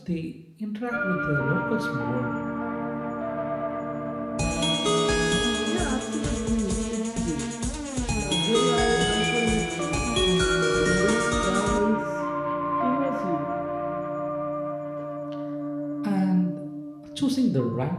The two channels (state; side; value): identical; both; correlation 1.00